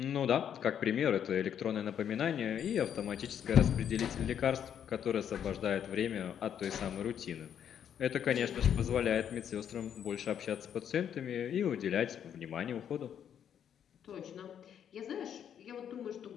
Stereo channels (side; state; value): right; quieter; 9.0 dB